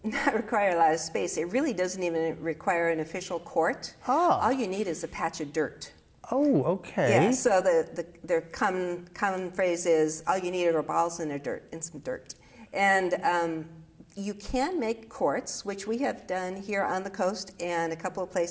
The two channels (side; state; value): both; identical; correlation 1.00